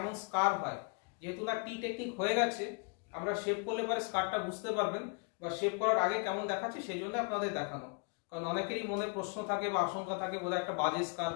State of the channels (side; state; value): right; quieter; 36.5 dB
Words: স্কার হয়। যেহেতু না টি টেকনিক হয়ে গেছে, আমরা শেপ করলে পরে স্কারটা বুঝতে পারবেন, বা শেপ করার আগে কেমন দেখাচ্ছে সেই জন্য আপনাদের দেখানো। কারণ অনেকেরই মনে প্রশ্ন থাকে বা আশঙ্কা থাকে, বোধহয় একটা বাজে স্কার